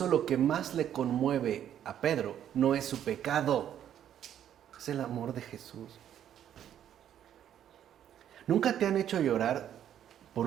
lo que más le conmueve a Pedro no es su pecado, es el amor de Jesús. ¿Nunca te han hecho llorar por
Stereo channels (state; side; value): quieter; left; 10.3 dB